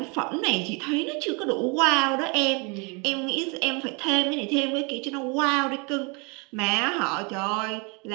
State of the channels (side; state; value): left; quieter; 31.5 dB